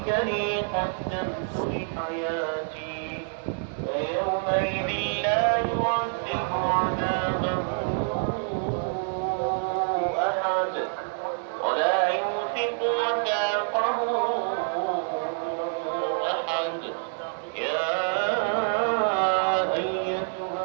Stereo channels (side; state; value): left; silent; digital silence